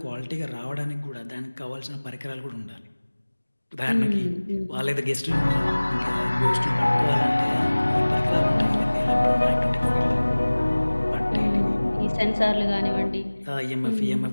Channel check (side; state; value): both; inverted; correlation -1.00